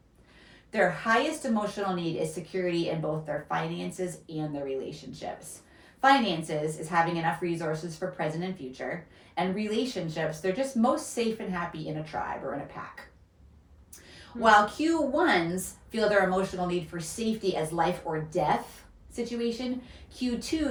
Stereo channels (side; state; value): both; identical; correlation 1.00